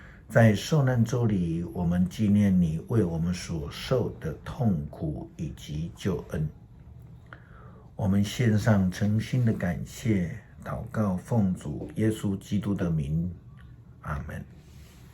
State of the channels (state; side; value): identical; both; correlation 1.00